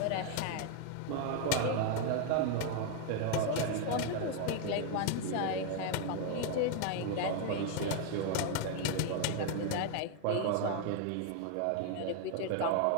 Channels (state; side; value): different; both; correlation 0.00